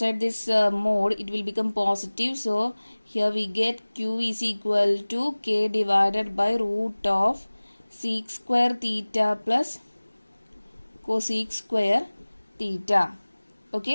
this mode, it will become positive. So here we get q is equal to k divided by root of sec square theta plus cosec square theta.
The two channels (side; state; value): both; inverted; correlation -1.00